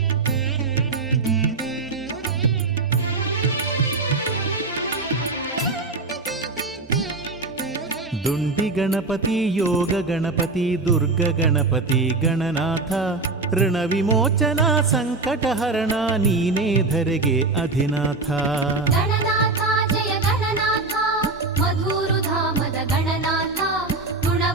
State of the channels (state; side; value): quieter; left; 3.6 dB